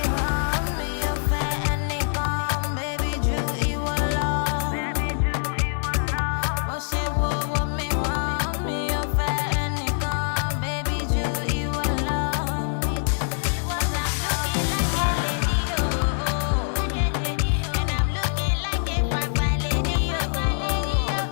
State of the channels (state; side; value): silent; right; 62 dB below the other